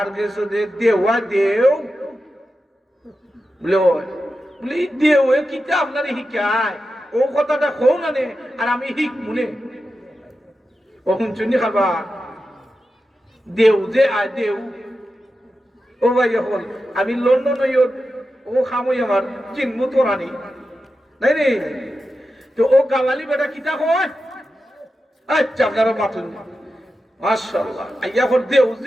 কাছে দেওয়া দেও। বলে বলে দেও কিতা আপনার শিকায়, ও কথাটা কও না নে আর আমি শিখ মনে ও শুনছুনি খাবা দেও যে আয় দেও। ও ভাই হল আমি লন্ডন ও খামই আমার চিনমু তোরানি নাই রে। তো ও গাওয়ালি বেটা কিতা কয়? আচ্ছা আপনারা বাতুন মাশাআল্লাহ আইয়া হল দেও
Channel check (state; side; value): normal; both; correlation 0.91